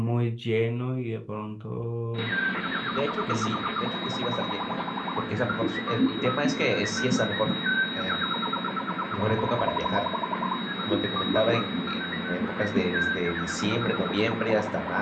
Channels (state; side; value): identical; both; correlation 1.00